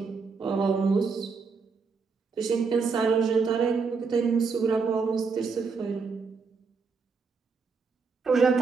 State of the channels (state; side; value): quieter; left; 4.9 dB